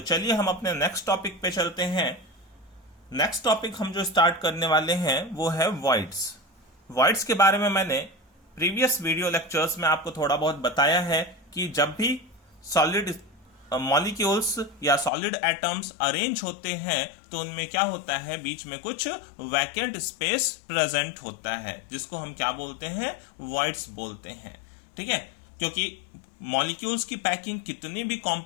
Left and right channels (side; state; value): right; drops out; at 15.1 s